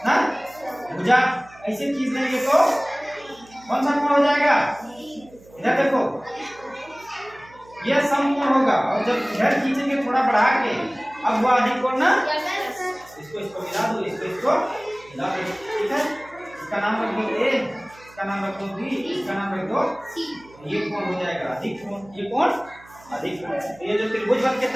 ना, भुजा ऐसे खींच देंगे तो कौन सा कोण हो जाएगा? इधर देखो, यह समकोण होगा, और जब इधर खींचेंगे थोड़ा बढ़ा के, अब वो अधिक कोण ना, इसको मिला दो, इसको मिला दो, ठीक है। इसका नाम रख दो ए, इसका नाम रख दो बी, इसका नाम रख दो सी। ये कोण हो जाएगा अधिक कोण, ये कोण अधिक कोण। ये जो त्रिभुज बन के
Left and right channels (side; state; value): right; noise; hum, 25 dB below the sound